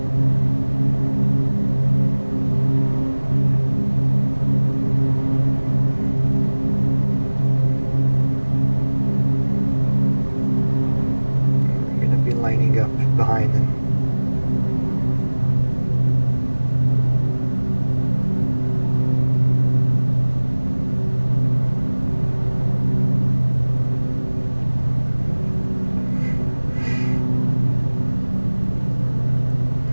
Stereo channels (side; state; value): both; inverted; correlation -1.00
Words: Lining up behind him.